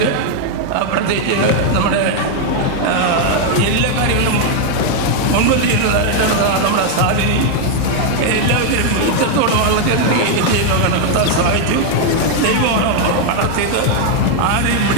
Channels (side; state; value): both; different; correlation 0.00